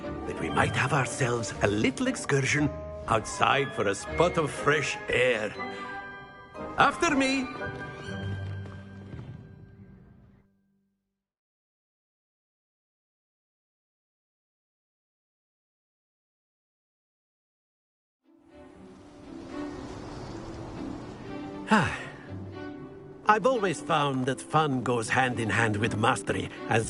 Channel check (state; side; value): identical; both; correlation 1.00